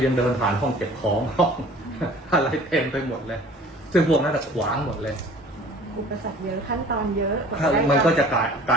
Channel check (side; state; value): both; normal; correlation 0.47